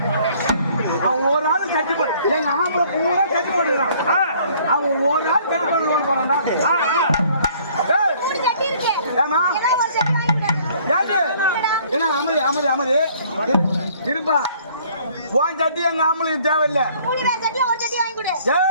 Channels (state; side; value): inverted; both; correlation -0.58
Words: அவன் ஒரு ஆள் கட்டி போடு எங்க ஆம்பளை பூரா கட்டி போடுறான். அவன் ஒரு ஆள் கட்டி போட போறான்டா. ஏமா என்ன அமைதி அமைதி அமைதி இருப்பா. போன் சட்டி எங்க ஆம்பளுக்கு தேவையில்லை.